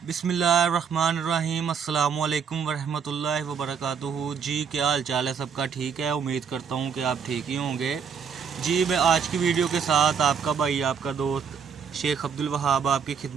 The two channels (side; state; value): left; quieter; 6.7 dB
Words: बिस्मिल्लाहिर्रहमानिर्रहीम अस्सलामुअलैकुम वरहमतुल्लाहि वबरकातुहू। जी क्या हाल चाल है सबका? ठीक है, उम्मीद करता हूँ कि आप ठीक ही होंगे। जी मैं आज की वीडियो के साथ आपका भाई आपका दोस्त शेख अब्दुल वहाब आपकी